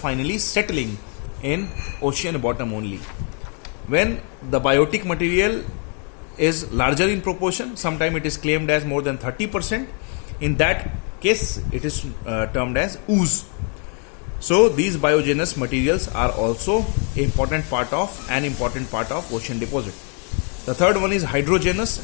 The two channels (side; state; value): right; quieter; 39.3 dB